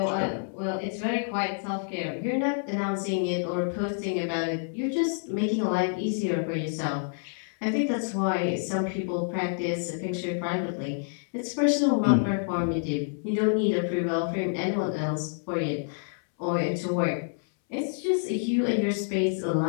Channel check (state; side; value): silent; right; 59 dB below the other